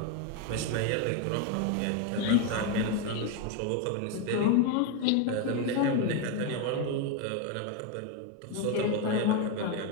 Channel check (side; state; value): both; different; correlation 0.02